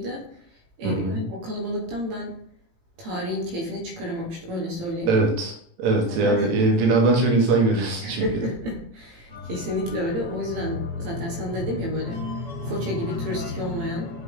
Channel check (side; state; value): left; late; 18 ms